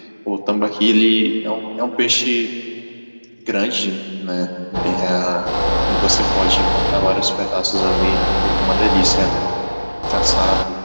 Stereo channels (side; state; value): both; inverted; correlation -1.00